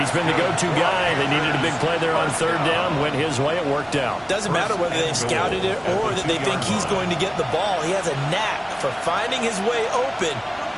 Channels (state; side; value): identical; both; correlation 1.00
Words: been the go-to guy. They needed a big play there on 3rd down. Went his way. It worked out. Doesn't matter whether they've scouted it or that they think he's going to get the ball. He has a knack for finding his way open